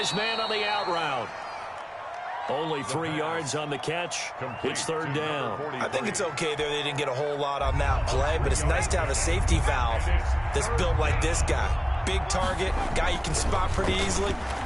man on the out route. Only 3 yards on the catch. It's third down. I think it's okay there. They didn't get a whole lot on that play, but it's nice to have a safety valve that's built like this guy. Big target, guy you can spot pretty easily.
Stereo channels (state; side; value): identical; both; correlation 1.00